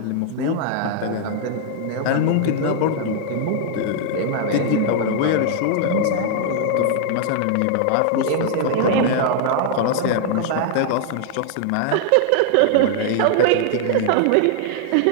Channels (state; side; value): different; both; correlation -0.01